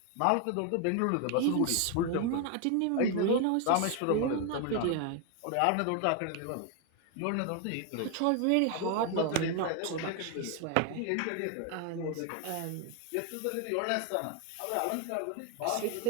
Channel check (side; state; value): both; different; correlation 0.01